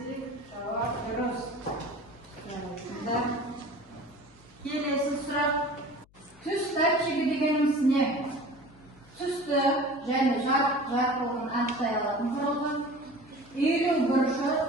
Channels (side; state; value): left; noise; hum, 29 dB below the sound